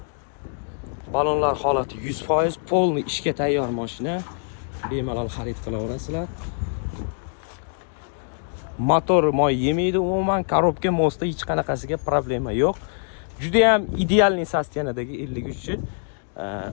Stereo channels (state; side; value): silent; right; 63 dB below the other